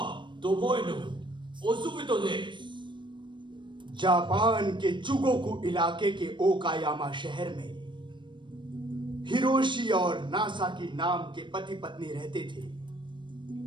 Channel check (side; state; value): left; late; 0.23 ms